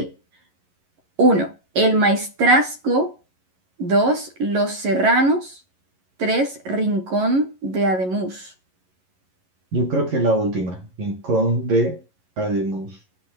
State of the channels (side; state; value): left; late; 11 ms